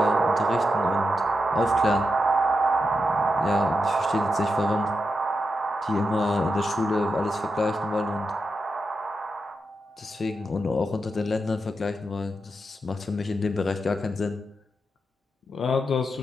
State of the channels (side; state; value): both; normal; correlation 0.87